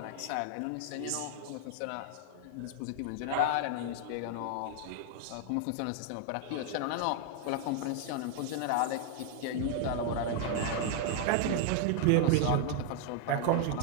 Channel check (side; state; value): both; different; correlation 0.00